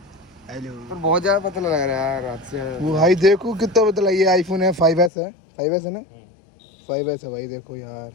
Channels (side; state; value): right; drops out; at 5.1 s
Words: हेलो। पर बहुत ज़्यादा पतला लग रहा है यार रात से। वो भाई देखो कितना पतला, ये आईफोन है 5S है, 5S है ना, 5S है भाई। देखो यार